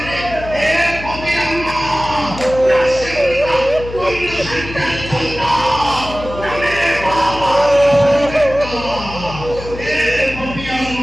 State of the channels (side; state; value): left; noise; hum, 11 dB below the sound